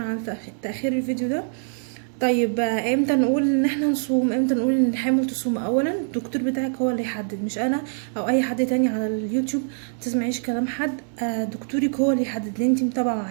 تاخير الفيديو ده. طيب امتى نقول ان احنا نصوم؟ امتى نقول ان الحامل تصوم؟ اولا الدكتور بتاعك هو اللي يحدد، مش انا او اي حد تاني على اليوتيوب. متسمعيش كلام حد. دكتورك هو اللي يحدد اللي انت متابعه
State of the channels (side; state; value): left; silent; 63 dB below the other